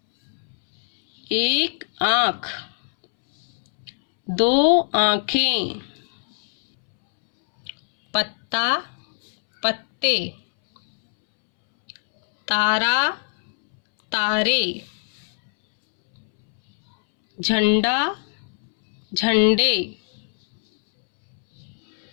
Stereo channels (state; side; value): silent; right; 64 dB below the other